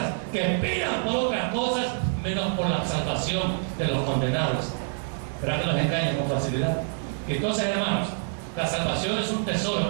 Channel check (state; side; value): silent; left; digital silence